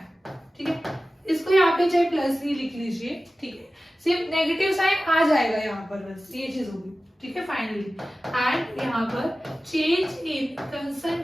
ठीक है। इसको यहाँ पे पे चाहे प्लस ही लिख लीजिए, ठीक है, सिर्फ नेगेटिव साइन आ जाएगा यहाँ पर, बस ये चीज होगी, ठीक है, फाइनली। एंड यहाँ पर change in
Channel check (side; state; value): both; normal; correlation 0.95